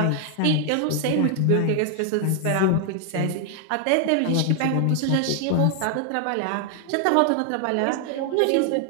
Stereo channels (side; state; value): both; different; correlation 0.00